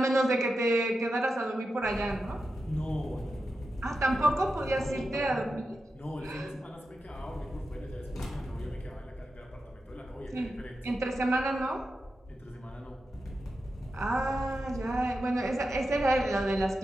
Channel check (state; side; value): normal; both; correlation 0.90